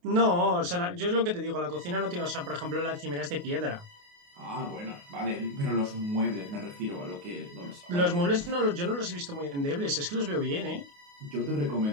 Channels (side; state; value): left; late; 28 ms